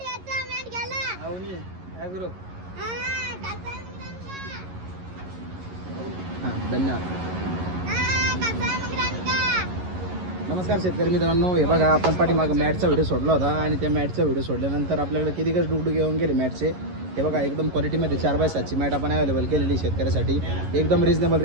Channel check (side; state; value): left; late; 11 ms